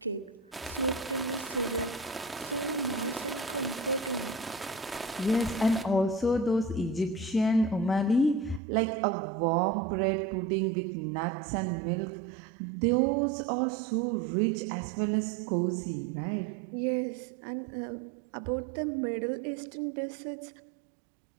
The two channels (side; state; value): left; drops out; at 8.6 s